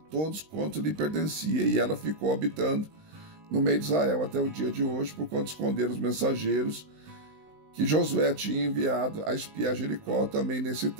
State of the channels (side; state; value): left; late; 19 ms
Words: quanto lhe pertencia, e ela ficou habitando no meio de Israel até o dia de hoje, porquanto esconderam os mensageiros que Josué tinha enviado a espiar Jericó. Também nesse